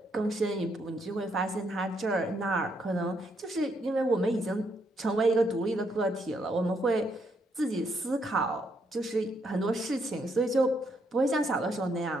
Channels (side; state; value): both; normal; correlation 0.75